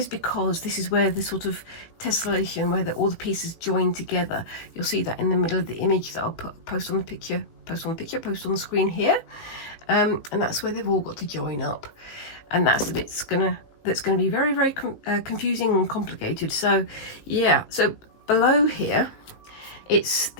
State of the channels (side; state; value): right; late; 18 ms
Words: because this is where the sort of tessellation, where all the pieces join together. You'll see that in the middle of the image that I'll post on the screen here, and that's where they've all got to join up, and that's the bit that's gonna be very, very confusing and complicated. So yeah, so below here, it's